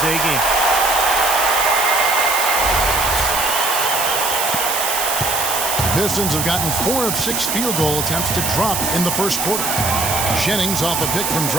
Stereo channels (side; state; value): right; noise; hiss, 1 dB below the sound